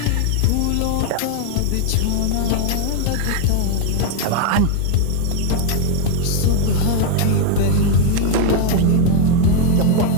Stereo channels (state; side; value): different; both; correlation 0.01